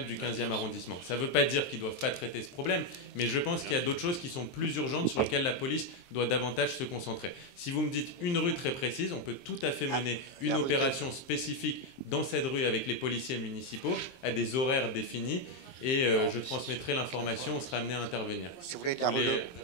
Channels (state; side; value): late; right; 23 ms